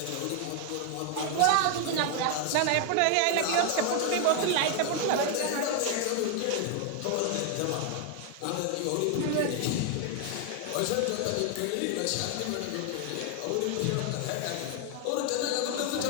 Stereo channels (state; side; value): different; both; correlation 0.00